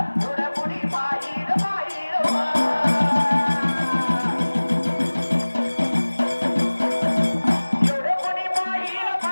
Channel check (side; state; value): both; inverted; correlation -1.00